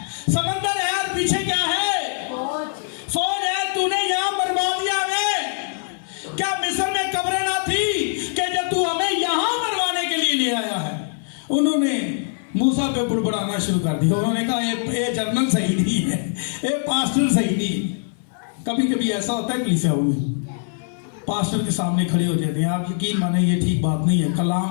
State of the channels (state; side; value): silent; right; 58 dB below the other